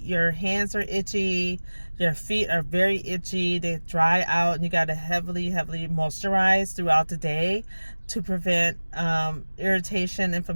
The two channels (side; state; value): both; inverted; correlation -1.00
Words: hands are itchy, your feet are very itchy, they dry out, and you got to heavily moisturize throughout the day to prevent irritation,